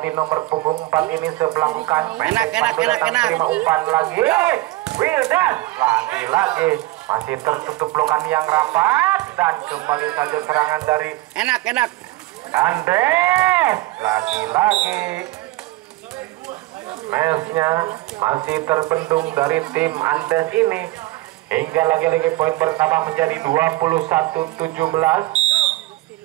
nomor punggung 4 ini sebelahkan. Enak. Terima umpan lagi. Wildan lagi masih tertutup blokan yang rapat dan kembali saja serangan dari Enak. Andes. Lagi mesnya masih terbendung dari tim Andes ini hingga lagi poin pertama menjadi 21-17.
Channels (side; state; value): left; quieter; 18.6 dB